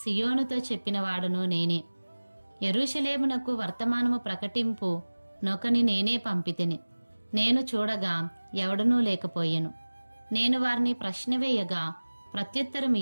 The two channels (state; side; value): inverted; both; correlation -1.00